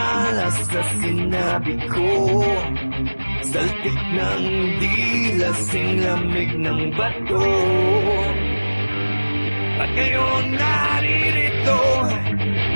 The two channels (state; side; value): inverted; both; correlation -1.00